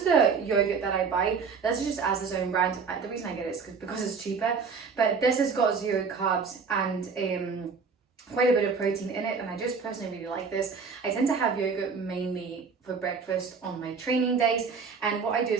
the yogurt that I buy. This is just as its own brand. The reason I get it is because it's cheaper, but this has got 0 carbs and quite a bit of protein in it, and I just personally really like this. I tend to have yogurt mainly for breakfast on my training days, and what I do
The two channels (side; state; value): left; quieter; 5.3 dB